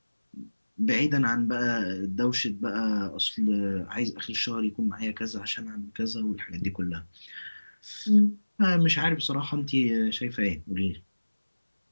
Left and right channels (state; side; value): inverted; both; correlation -1.00